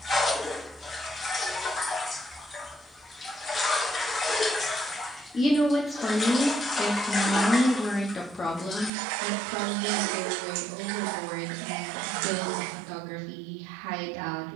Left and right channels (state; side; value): drops out; left; at 8.9 s